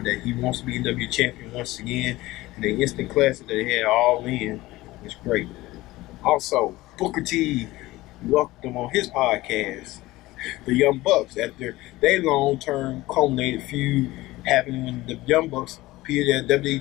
that he wants to be NWA champion once again. And the instant classic that they had all in was great. Also, Booker T welcomed them on his podcast, the Young Bucks, after their long-term culminated feud happened when the Young Bucks appeared at WWE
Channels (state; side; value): quieter; right; 18.5 dB